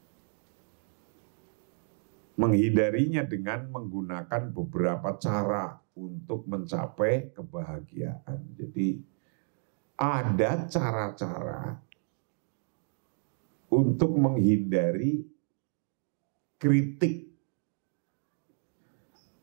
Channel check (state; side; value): silent; left; 57 dB below the other